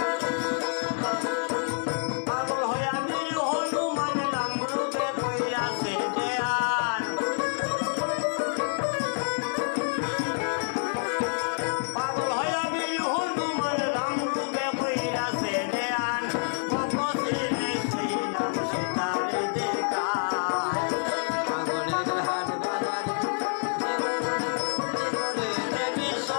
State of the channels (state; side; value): silent; right; 60 dB below the other